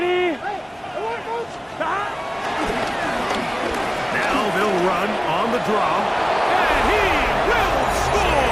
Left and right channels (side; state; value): both; identical; correlation 1.00